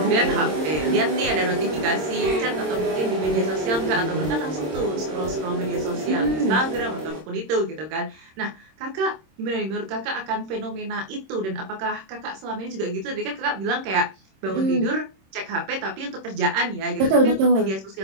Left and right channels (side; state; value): left; late; 26 ms